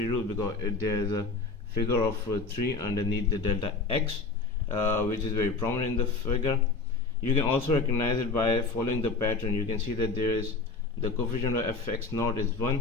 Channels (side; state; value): right; quieter; 3.9 dB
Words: rule, because there is a figure of 3 underneath the delta x, which is very prominent in the figure. You can also recognize it by following the pattern. You can see that there is the coefficient of fx naught is